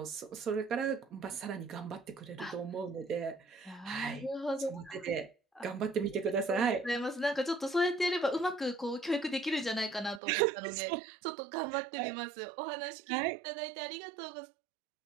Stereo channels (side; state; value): left; drops out; at 10.2 s